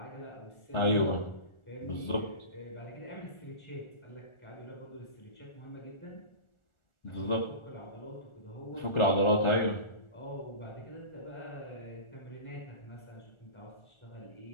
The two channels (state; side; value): late; right; 1.4 ms